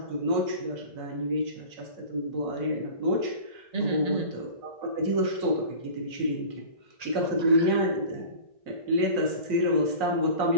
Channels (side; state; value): left; late; 1.8 ms